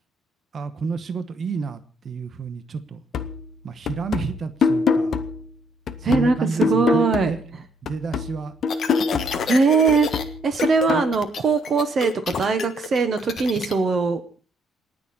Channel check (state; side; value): normal; both; correlation 0.69